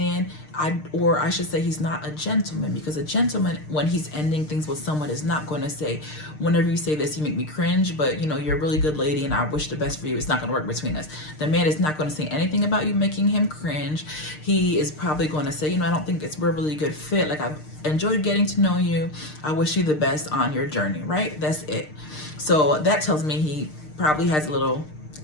I should say he's not a gentleman, because a gentleman, when he's ending things with someone, is not going to say, whenever you say this, you make me cringe, but you're a really good lady and I wish the best for you. It's not going to work between us. The man is not going to say anything about you making him cringe. He is probably going to say, I don't think we're a really good fit. Like, I've enjoyed getting to know you. I wish you the best on your journey, right? That's it. So that tells me he probably has a little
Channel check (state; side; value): late; right; 6.6 ms